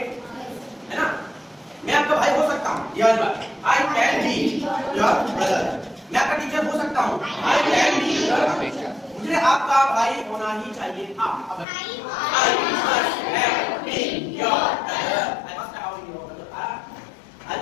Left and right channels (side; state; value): right; drops out; at 11.7 s